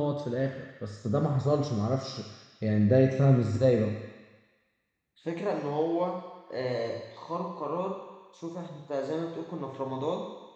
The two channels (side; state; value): both; identical; correlation 1.00